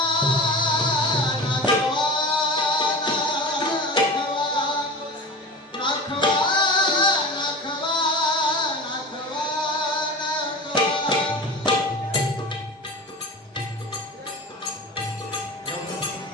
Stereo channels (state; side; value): normal; both; correlation 0.32